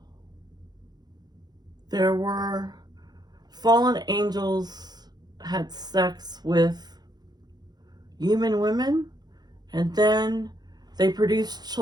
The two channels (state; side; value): late; left; 0.20 ms